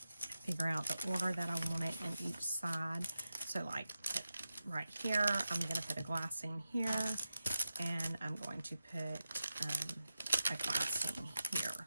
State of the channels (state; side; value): inverted; both; correlation -0.90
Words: figure out the order that I want it in each side. So like right here, I'm going to put a glassine here. And I'm going to put a glassine here.